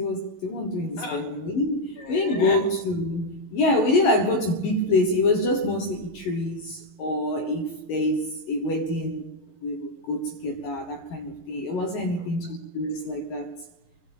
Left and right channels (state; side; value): late; right; 11 ms